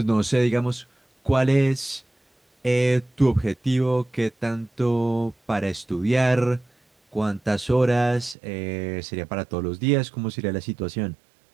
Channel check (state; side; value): drops out; left; at 8.3 s